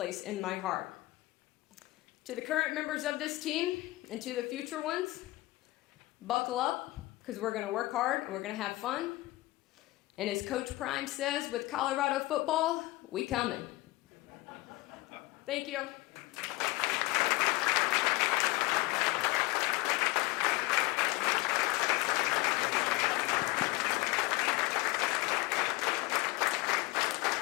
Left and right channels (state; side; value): quieter; right; 20.4 dB